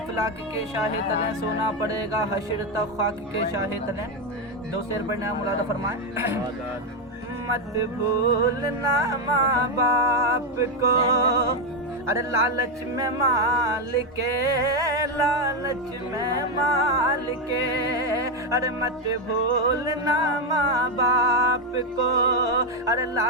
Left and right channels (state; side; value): normal; both; correlation 0.07